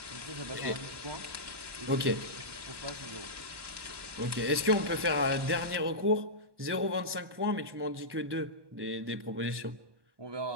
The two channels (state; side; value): late; left; 1.1 ms